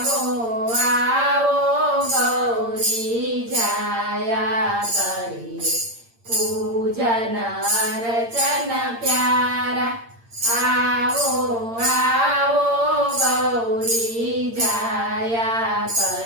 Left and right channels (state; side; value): late; left; 8.7 ms